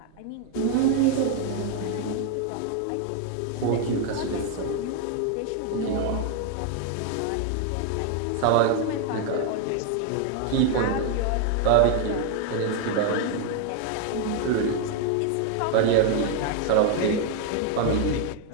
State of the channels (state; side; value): different; both; correlation 0.01